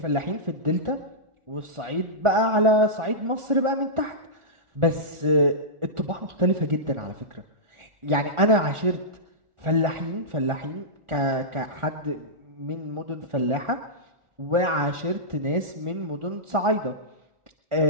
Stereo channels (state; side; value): late; left; 1.4 ms